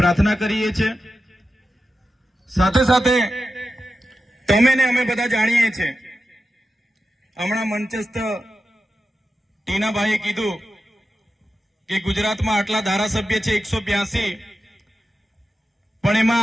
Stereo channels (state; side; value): normal; both; correlation 0.91